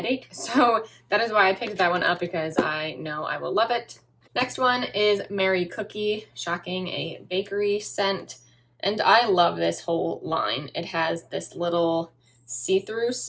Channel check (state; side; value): identical; both; correlation 1.00